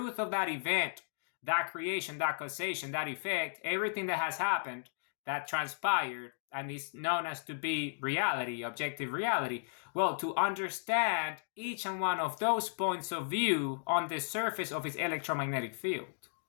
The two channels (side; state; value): right; silent; digital silence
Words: of that event, that creation, that causation, that effect, everything that has happened, that transpired and is known as to be reality, objective reality. Well, to understand each and one of those points of view on the surface of its electromagnetic field.